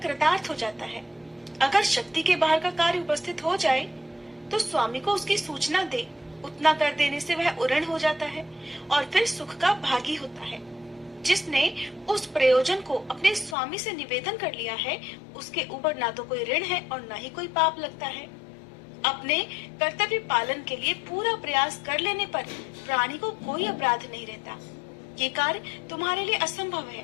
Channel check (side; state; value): right; drops out; at 13.6 s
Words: कृतार्थ हो जाता है। अगर शक्ति के बाहर का कार्य उपस्थित हो जाए तो स्वामी को उसकी सूचना दे, उतना कर देने से वह उऋण हो जाता है और फिर सुख का भागी होता है। जिसने उस प्रयोजन को अपने स्वामी से निवेदन कर लिया है, उसके ऊपर ना तो कोई ऋण है और ना ही कोई पाप लगता है। अपने कर्तव्य पालन के लिए पूरा प्रयास कर लेने पर प्राणी को कोई अपराध नहीं रहता। ये कार्य तुम्हारे लिए असंभव है,